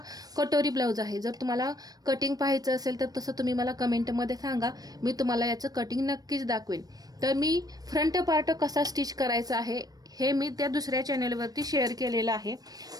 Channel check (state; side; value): late; left; 0.19 ms